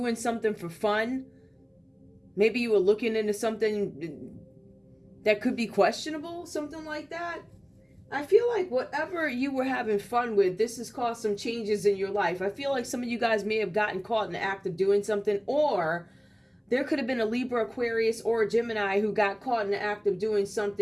something for fun. Maybe you were looking into something that could be questionable, something like that. I feel like whatever you were having fun with, this has caused some changes in your life. I feel like some of you guys may have gotten caught in the act of doing something, or there could have been a Libra, Aquarius, or a Gemini who got caught in the act of doing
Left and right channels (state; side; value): identical; both; correlation 1.00